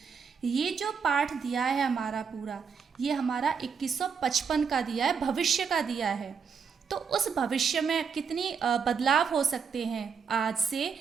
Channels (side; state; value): left; quieter; 6.2 dB